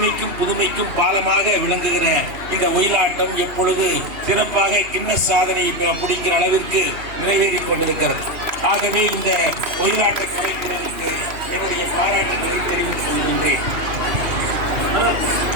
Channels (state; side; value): late; left; 2.8 ms